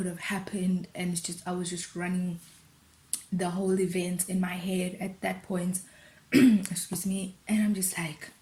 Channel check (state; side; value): identical; both; correlation 1.00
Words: have happened, and it's just, I was just running the whole event in my head at that point. Excuse me. And I'm just like,